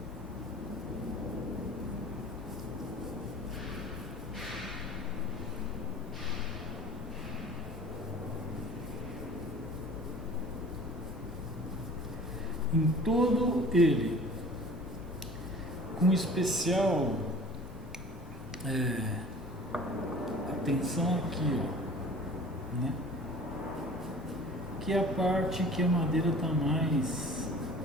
Em todo ele, com especial atenção aqui, ó, né? Que é a parte que a madeira está mais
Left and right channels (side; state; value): both; normal; correlation 0.45